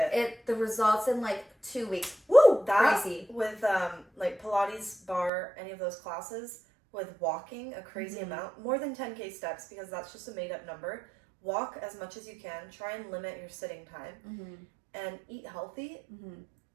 The results in like 2 weeks. Woo! That crazy. With like Pilates, bar, any of those classes, with walking a crazy amount, more than 10K steps, because that's just a made up number. Walk as much as you can. Try and limit your sitting time, and eat healthy.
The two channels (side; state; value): left; drops out; at 5.3 s